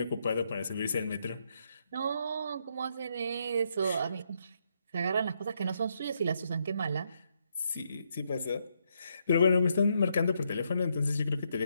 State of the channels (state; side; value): inverted; both; correlation -0.77